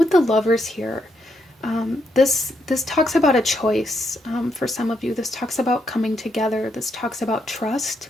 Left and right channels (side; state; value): both; normal; correlation 0.78